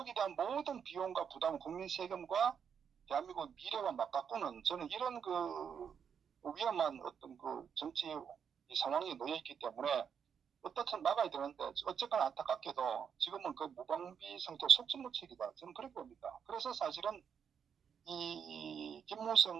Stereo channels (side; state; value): left; quieter; 7.4 dB